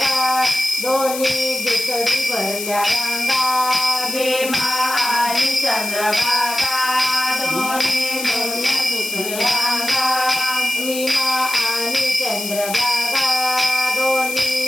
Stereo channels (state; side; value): noise; left; hiss, 7 dB below the sound